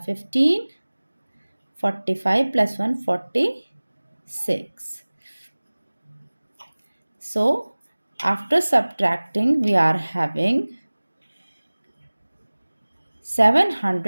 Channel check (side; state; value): both; inverted; correlation -1.00